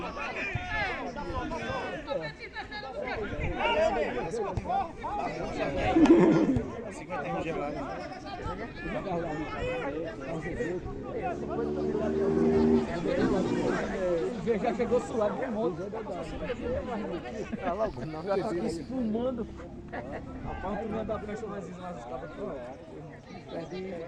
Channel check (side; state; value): both; identical; correlation 1.00